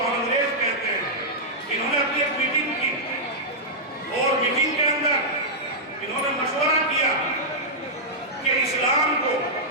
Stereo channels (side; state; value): both; normal; correlation -0.09